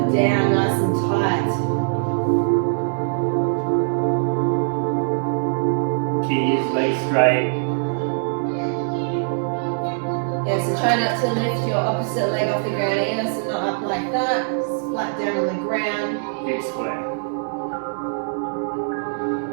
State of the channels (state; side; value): silent; left; 64 dB below the other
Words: down nice and tight. Keys, legs straight. Yeah, so try not to lift your opposite leg off the ground either, so not up like that, it's flat down on the ground. Hips square.